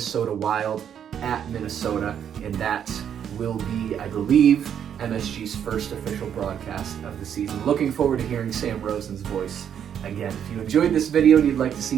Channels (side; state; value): left; quieter; 8.8 dB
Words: Wild at Minnesota, and that will be, I believe, MSG's first official broadcast of the season. Looking forward to hearing Sam Rosen's voice again. If you enjoyed this video and you'd like to see